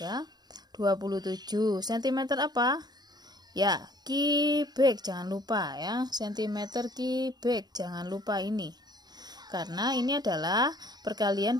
27 cm apa? Ya, kubik jangan lupa ya, sentimeter kubik jangan lupa ini. Karena ini adalah perkalian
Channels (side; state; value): left; late; 0.20 ms